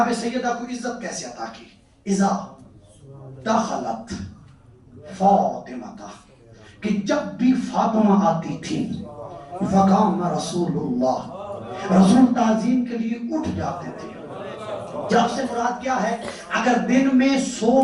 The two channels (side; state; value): both; identical; correlation 1.00